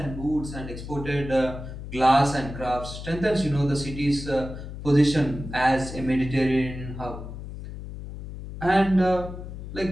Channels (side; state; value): left; noise; hum, 10 dB below the sound